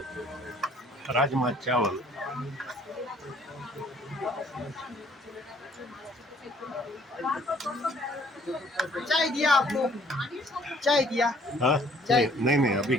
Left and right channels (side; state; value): both; normal; correlation 0.60